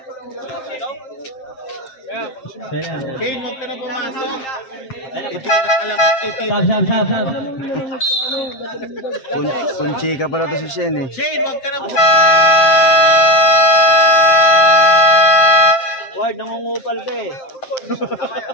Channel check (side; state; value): right; late; 7.6 ms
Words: Kane, huwag ka na pumasok. Hindi ka na alam kung titira. Sab. Kunchi ka pala to si Shen eh. Shane, huwag ka na Ward, nangungupal ka eh.